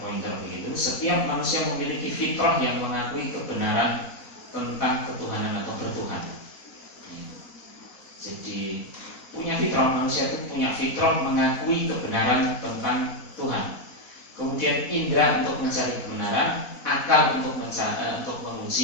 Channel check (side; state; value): right; late; 4.1 ms